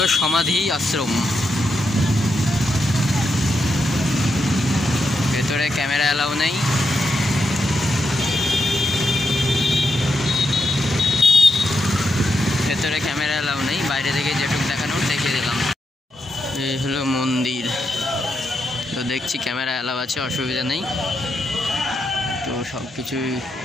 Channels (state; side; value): normal; both; correlation 0.83